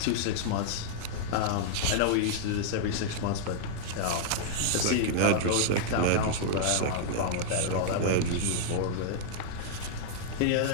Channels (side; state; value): both; different; correlation -0.01